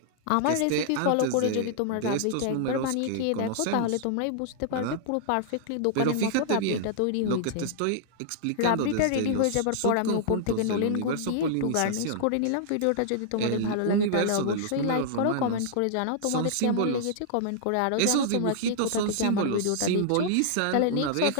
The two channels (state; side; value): different; both; correlation -0.01